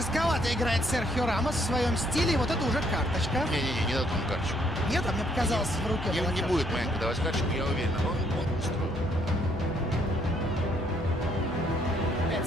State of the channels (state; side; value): normal; both; correlation 0.68